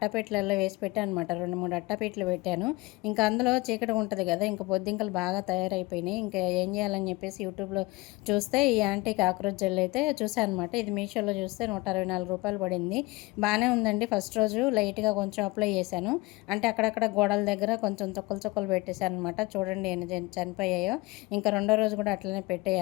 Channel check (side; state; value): right; quieter; 22.3 dB